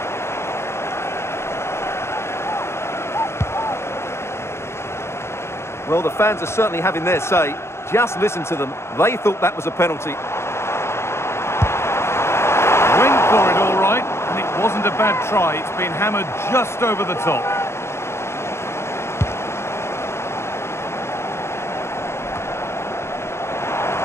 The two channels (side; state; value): right; late; 0.13 ms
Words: Well, the fans are certainly having their say. Just listen to them. They thought that was a penalty. Went for it all right, and it wasn't a bad try. It's been hammered just over the top.